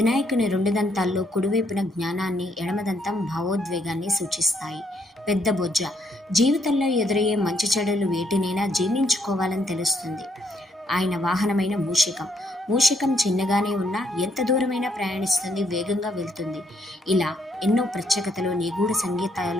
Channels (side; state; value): both; normal; correlation 0.72